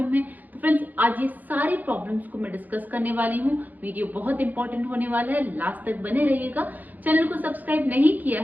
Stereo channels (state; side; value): late; left; 0.083 ms